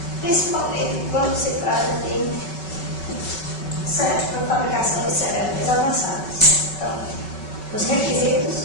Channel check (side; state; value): right; late; 5.3 ms